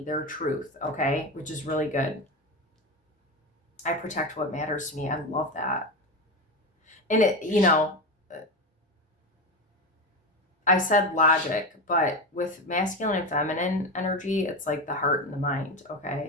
their truth, okay? Which is really good. I protect what matters to me. I love that. And I said logic, but with masculine and feminine energy, it's like the heart and the mind,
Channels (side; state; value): both; normal; correlation 0.19